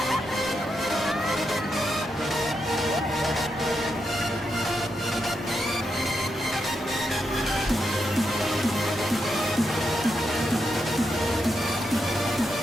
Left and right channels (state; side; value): normal; both; correlation 0.83